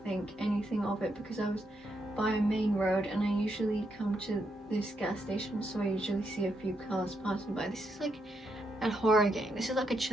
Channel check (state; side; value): normal; both; correlation 0.80